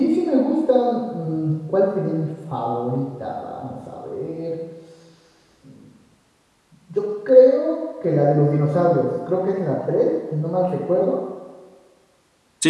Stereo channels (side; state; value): both; identical; correlation 1.00